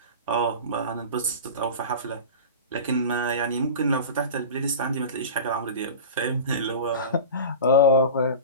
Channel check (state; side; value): inverted; both; correlation -0.32